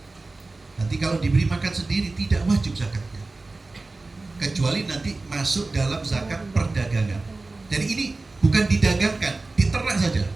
Nanti kalau diberi makan sendiri tidak wajib zakatnya, kecuali nanti masuk dalam zakat perdagangan. Jadi ini bukan didagangkan, diternak saja,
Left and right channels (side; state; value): left; quieter; 3.4 dB